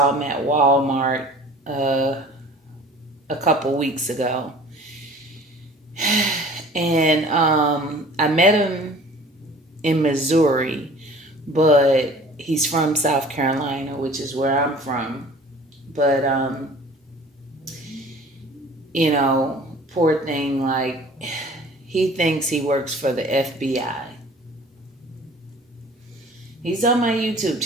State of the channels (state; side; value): normal; both; correlation 0.47